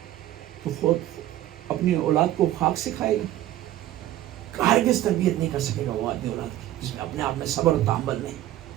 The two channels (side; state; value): left; quieter; 13.8 dB